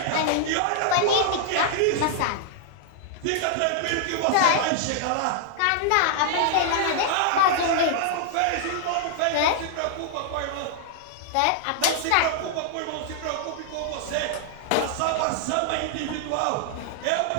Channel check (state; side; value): different; both; correlation -0.01